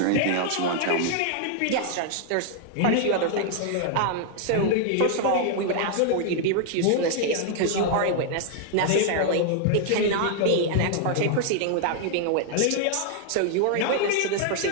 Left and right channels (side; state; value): both; different; correlation 0.00